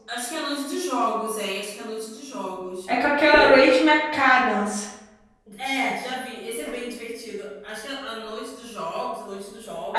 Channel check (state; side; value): identical; both; correlation 1.00